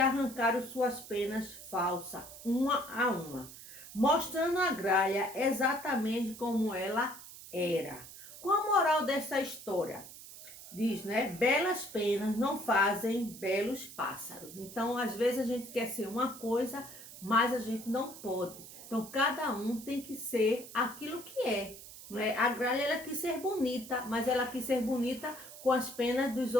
suas penas falsas, uma a uma, mostrando a gralha exatamente como ela era. Qual a moral dessa história? Diz, né? Belas penas não fazem belos pássaros. Então, às vezes a gente quer ser uma coisa, mas a gente não pode. Então, cada um tem que ser aquilo que é. Não é? A gralha ela quis ser bonita, mas ela quis ser bonita com as penas dos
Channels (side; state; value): right; noise; hiss, 15 dB below the sound